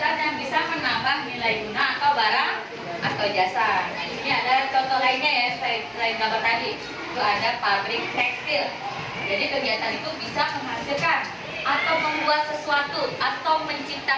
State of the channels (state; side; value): identical; both; correlation 1.00